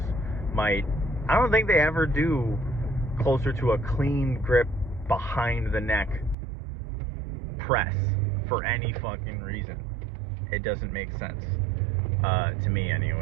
might. I don't think they ever do closer to a clean grip behind the neck press for any fucking reason. It doesn't make sense to me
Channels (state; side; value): drops out; left; at 6.4 s